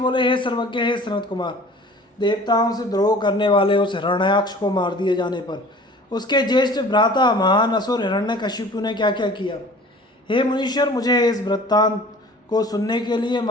हे सर्वज्ञ, हे सनत कुमार, देवताओं से द्रोह करने वाले उस हिरण्याक्ष को मार दिए जाने पर उसके ज्येष्ठ भ्राता महान असुर हिरण्यकशिपु ने क्या क्या किया। हे मुनीश्वर, मुझे इस वृत्तांत को सुनने के लिए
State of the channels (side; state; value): both; normal; correlation 0.46